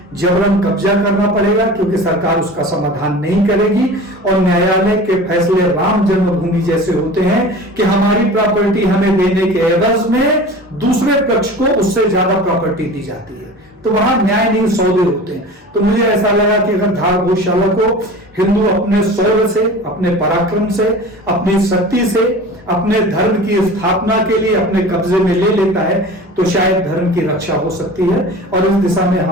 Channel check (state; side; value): normal; both; correlation 0.37